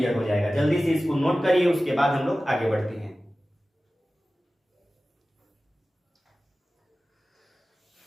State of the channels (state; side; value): normal; both; correlation 0.96